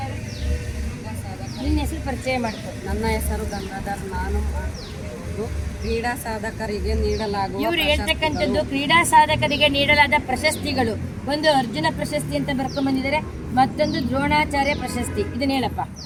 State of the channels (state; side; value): identical; both; correlation 1.00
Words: ನಿನ್ನ ಹೆಸರು ಪರಿಚಯ ಮಾಡಿಕೊಡಿ. ನನ್ನ ಹೆಸರು ಗಂಗಾಧರ್, ನಾನು ಕ್ರೀಡಾ ಸಾಧಕರಿಗೆ ನೀಡಲಾಗುವ ಇವರು ಹೇಳ್ತಕ್ಕಂಥದ್ದು ಕ್ರೀಡಾ ಸಾಧಕರಿಗೆ ನೀಡಲಾದ ಪ್ರಶಸ್ತಿಗಳು. ಒಂದು ಅರ್ಜುನ ಪ್ರಶಸ್ತಿ ಅಂತ ಬರ್ಕೊಂಡ್ ಬಂದಿದ್ದಾರೆ, ಮತ್ತೊಂದು ದ್ರೋಣಾಚಾರ್ಯ ಪ್ರಶಸ್ತಿ. ಇದನ್ನ ಹೇಳಪ್ಪ.